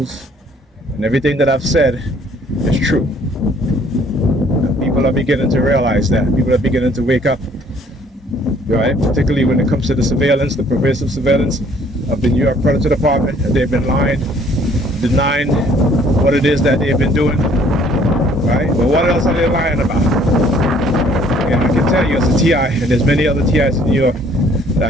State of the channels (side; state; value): both; normal; correlation 0.60